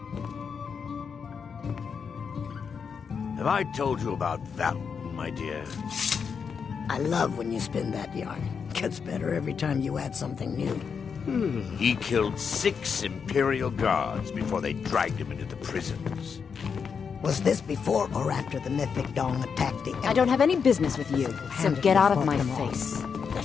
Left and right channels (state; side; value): quieter; right; 6.2 dB